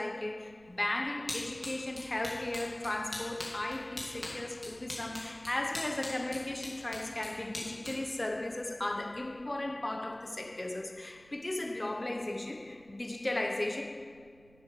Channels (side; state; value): right; noise; rumble, 26 dB below the sound